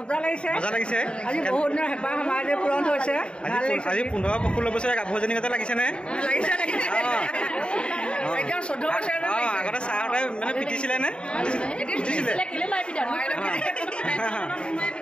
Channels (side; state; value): right; late; 0.053 ms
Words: লাগিছে আজি 15-16 বছৰীয়া গাভৰুজনী গতে লাগিছেনে আগতে চাহতে মানে পিটিছিলে নে